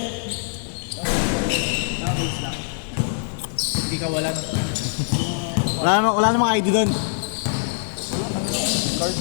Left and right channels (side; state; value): right; silent; digital silence